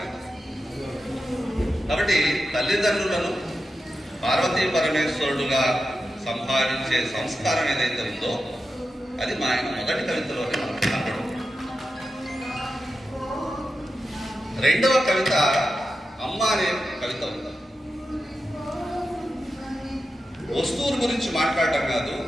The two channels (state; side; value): normal; both; correlation 0.90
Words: అంటే. కాబట్టి తల్లిదండ్రులను పార్వతీ పరమేశ్వరుడుగా సంపాదించే సంస్కారం ఏదైతే ఉందో అది మా ఆయన మొదటి కవితలోనే మనం కనపడం. రెండవ కవిత అమ్మ అనే కవిత ఉంది. వస్తువుల గురించి మాట్లాడటం కాదు,